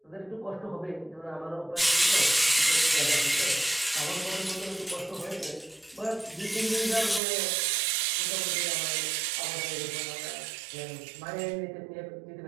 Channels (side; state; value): left; drops out; at 7.2 s